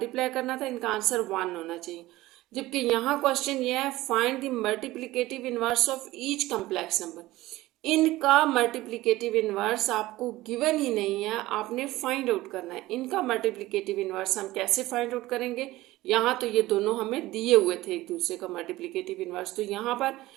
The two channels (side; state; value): left; quieter; 17.6 dB